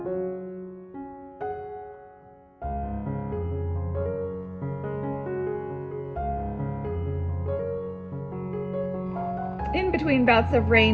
In between bouts of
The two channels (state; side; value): identical; both; correlation 1.00